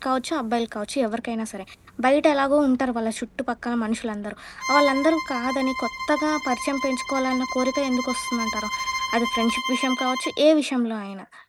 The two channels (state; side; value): identical; both; correlation 1.00